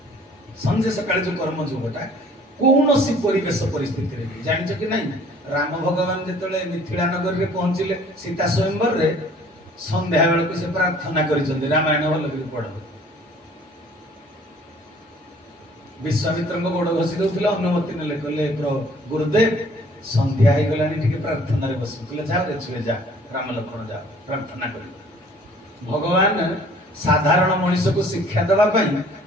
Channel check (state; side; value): normal; both; correlation 0.55